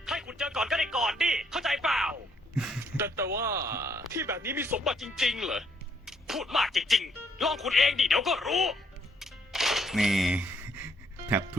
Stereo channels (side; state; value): both; normal; correlation 0.69